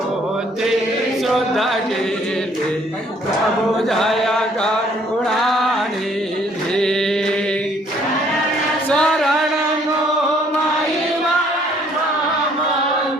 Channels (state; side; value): normal; both; correlation 0.62